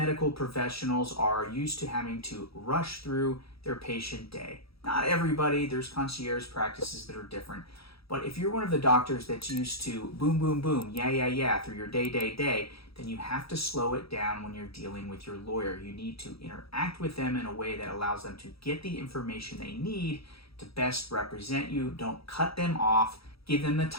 professionals are used to having to rush through their patient day. Not everybody, there's concierge practices that are different. But if you're one of the doctors that's used to boom, boom, boom, yeah, through your day, then you have to slow it down when you're dealing with your lawyer. You need to interact with them in a way that allows them to get the information they need to best represent you. Don't cut them off. Give them the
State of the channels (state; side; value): late; right; 0.76 ms